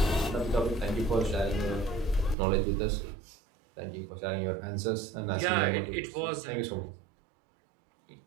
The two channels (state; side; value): drops out; left; at 2.4 s